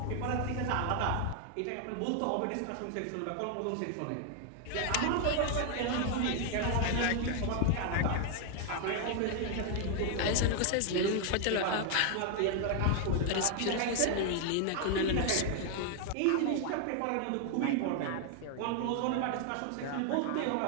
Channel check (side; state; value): both; different; correlation 0.00